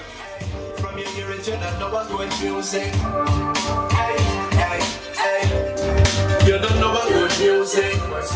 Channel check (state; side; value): identical; both; correlation 1.00